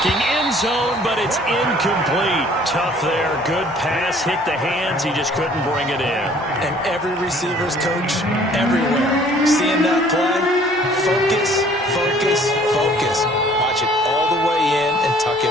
end zone, but it's incomplete. Tough there. Good pass. Hit the hands. He just couldn't bring it in. And every receiver's coach everywhere. Seeing that play, focus, focus, focus. Watch it all the way in and tuck it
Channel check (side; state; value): both; normal; correlation 0.56